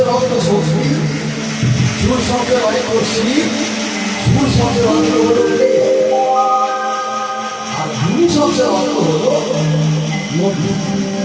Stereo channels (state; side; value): identical; both; correlation 1.00